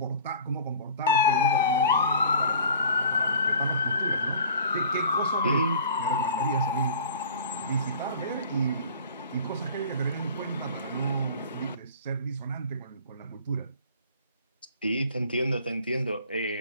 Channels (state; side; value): inverted; both; correlation -0.44